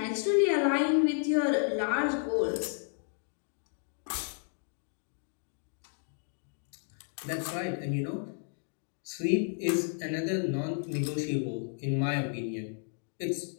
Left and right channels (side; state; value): right; silent; 56 dB below the other